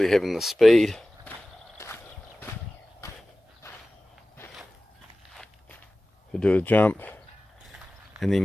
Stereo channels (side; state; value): both; normal; correlation 0.97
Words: having the speed to do a jump, and